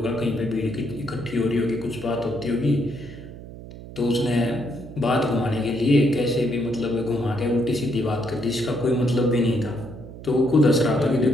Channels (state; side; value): noise; right; hum, 14 dB below the sound